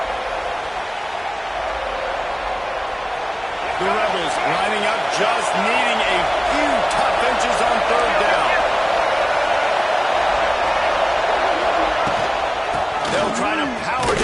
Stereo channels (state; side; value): identical; both; correlation 1.00